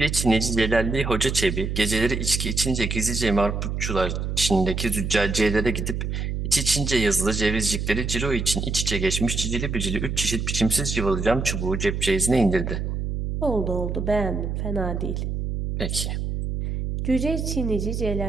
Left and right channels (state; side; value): noise; right; hum, 2 dB below the sound